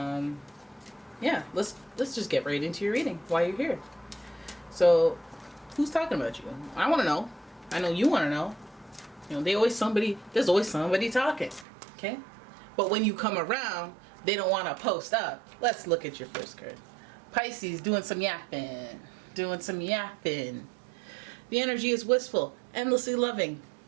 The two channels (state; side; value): drops out; left; at 11.7 s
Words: let's just get right into your reading while you're here. So, who's talking about you? I want to know. I know you want to know. You know, there's always somebody talking, okay? But when you come around, they don't want to post up. Let's look at your first card. Pisces, doing some yapping. The energy is wistful, endlessly loving,